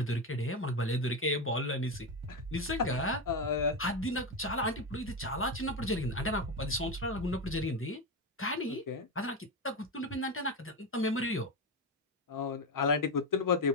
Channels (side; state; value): both; normal; correlation 0.13